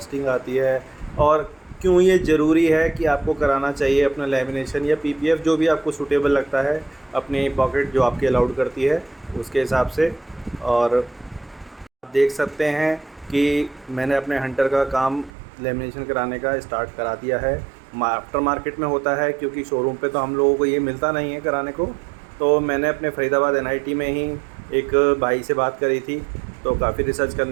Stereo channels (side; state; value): left; drops out; at 15.3 s